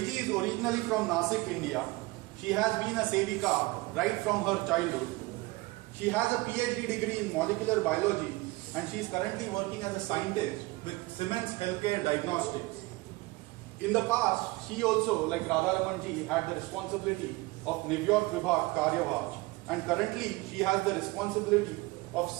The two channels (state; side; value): quieter; left; 22.2 dB